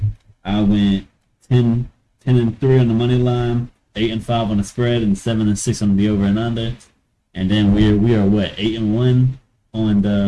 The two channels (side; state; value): both; identical; correlation 1.00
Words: I went 10 and 3 on the money line, 8 and 5 on the spread, and 7 and 6 on the over and under. And then we are what 8 and 1 on